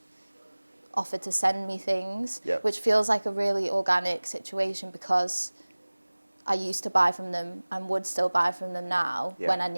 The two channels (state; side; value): inverted; both; correlation -1.00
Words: offered to send me things, Yep. which feels like a really organic situation because I used to buy from them and would still buy from them now Yep. when I